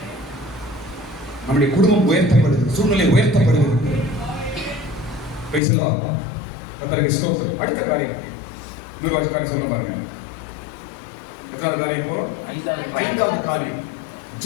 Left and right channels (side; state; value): right; drops out; at 5.6 s